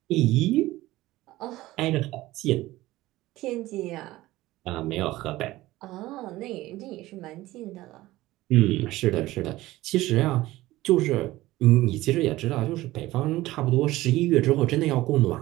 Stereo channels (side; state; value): left; quieter; 17.4 dB